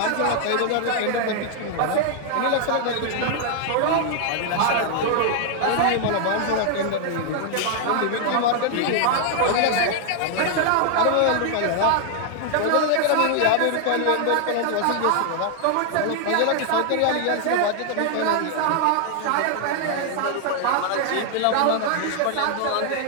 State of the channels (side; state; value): both; different; correlation 0.00